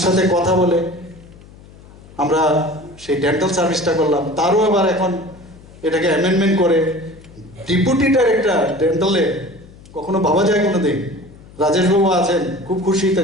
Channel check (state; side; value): noise; left; hum, 21 dB below the sound